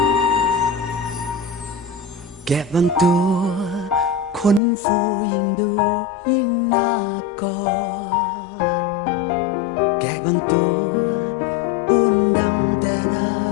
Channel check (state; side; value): drops out; right; at 4.6 s